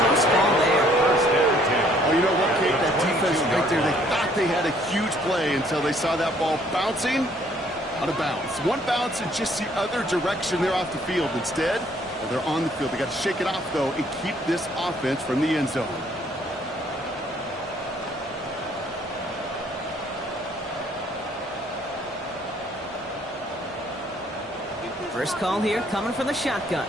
ball there. First and 10. Oh, you know what, Kate? That defense right there, they thought they had a huge play until they saw that ball bouncing out of bounds. One bounce in just the other direction. They're off the field. Instead, well, they're on the field. They got to shake it off, though, and keep this offense from the end zone. First call here coming from the shotgun.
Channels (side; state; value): both; normal; correlation 0.63